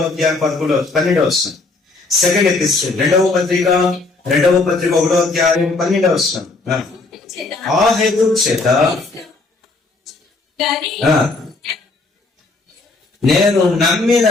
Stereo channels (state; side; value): quieter; right; 3.5 dB